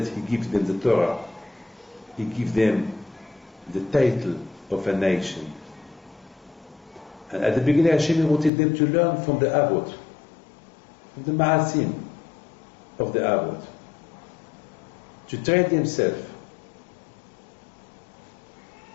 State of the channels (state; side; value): drops out; right; at 8.5 s